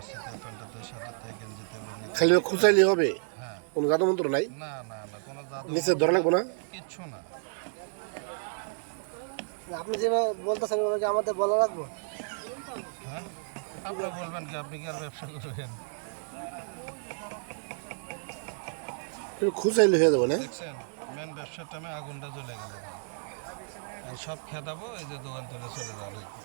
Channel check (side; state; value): left; silent; digital silence